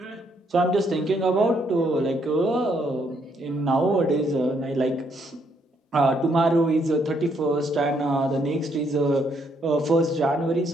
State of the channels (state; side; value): normal; both; correlation 0.72